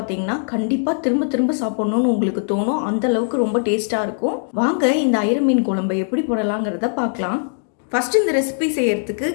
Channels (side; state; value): right; silent; digital silence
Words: கண்டிப்பாக திரும்ப திரும்ப சாப்பிட்ணுன்னு உங்களுக்கு தோணும். அந்த அளவுக்கு ரொம்ப டேஸ்ட்டாக இருக்கும். வாங்க இந்த ஐர மீன் குழம்பை எப்படி போடலாங்கிறத பார்க்கலாம். ஃபஸ்ட்டு இந்த ரெசிபி செய்யறதுக்கு